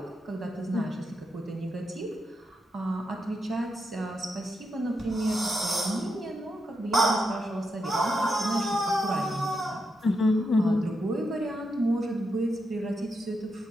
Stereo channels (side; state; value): both; normal; correlation 0.84